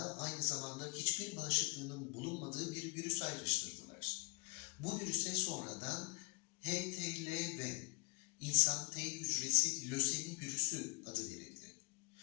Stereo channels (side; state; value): right; quieter; 33.3 dB